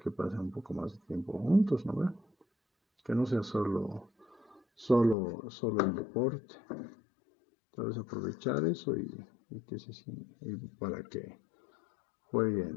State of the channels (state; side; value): drops out; right; at 5.2 s